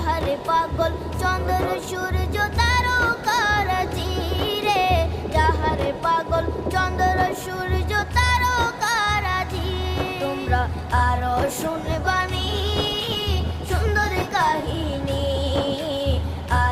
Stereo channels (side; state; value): both; identical; correlation 1.00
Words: পাগল চন্দ্র সূর্য তারকারাজি রে, যাহার পাগল চন্দ্র সূর্য তারকারাজি। তোমরা আরো শুনবানি সুন্দর কাহিনী,